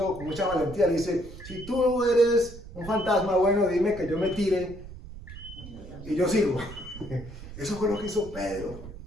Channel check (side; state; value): right; noise; rumble, 14 dB below the sound